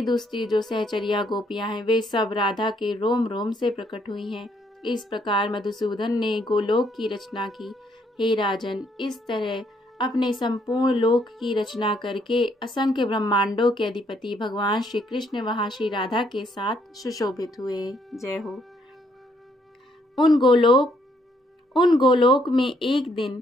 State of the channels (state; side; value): normal; both; correlation 0.70